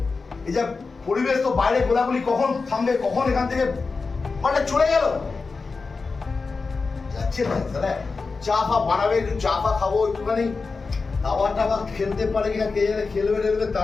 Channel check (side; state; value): right; quieter; 4.3 dB